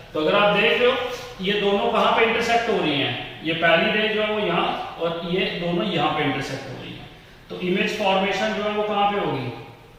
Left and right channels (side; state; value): both; identical; correlation 1.00